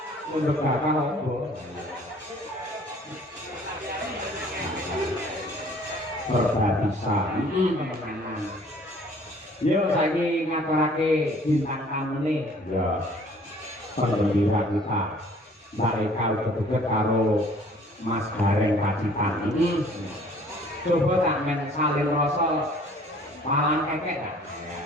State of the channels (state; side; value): normal; both; correlation 0.55